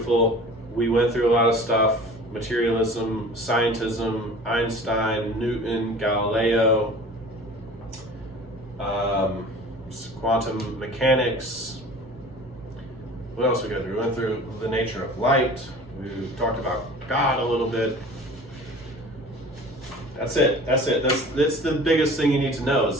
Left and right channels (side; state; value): both; normal; correlation 0.42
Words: We went through a lot of stuff: materialism, scientism, Einstein, Newton, Galileo, quantum mechanics. What else we go through? We went through the nature of light. We talked about God a little bit. That's it. That's the biggest thing you need to know,